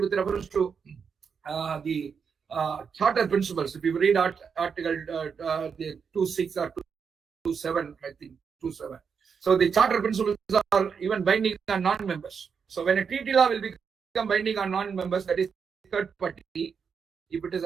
reference to the charter principles, if you read article the 2.6 or 2.7, I think 2.7. So the charter principles are even binding on non-members. So when a treaty law will become binding on non-members, that is third party, if it is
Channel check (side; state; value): left; quieter; 6.3 dB